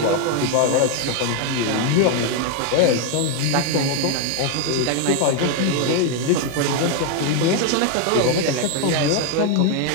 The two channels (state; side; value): different; both; correlation 0.01